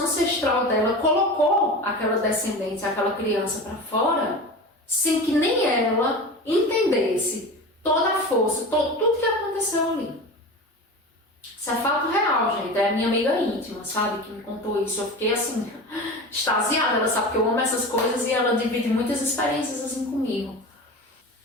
ancestral dela colocou aquela descendente, aquela criança para fora, sem que nem ela entendesse toda a força, tudo que aconteceu ali. Isso é fato real, gente. É a minha amiga íntima, sabe? Que me contou isso. Eu fiquei assim, extasiada. Ela sabe que eu amo essas coisas e ela divide muitas experiências assim comigo.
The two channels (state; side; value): normal; both; correlation 0.30